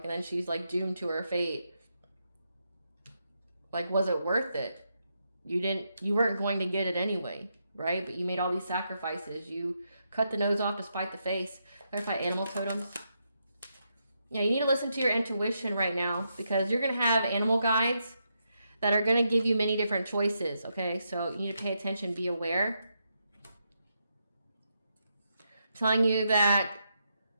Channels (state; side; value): inverted; both; correlation -0.82